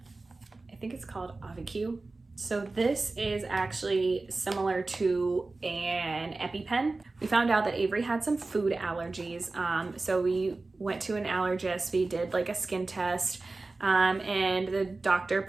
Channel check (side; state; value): left; quieter; 3.4 dB